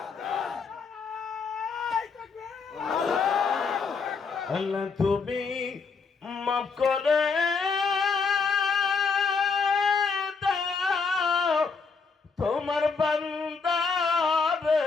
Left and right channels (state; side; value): quieter; right; 5.0 dB